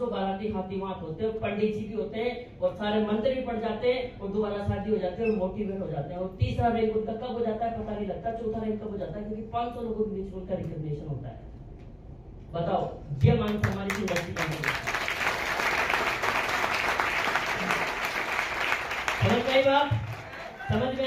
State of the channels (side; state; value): both; identical; correlation 1.00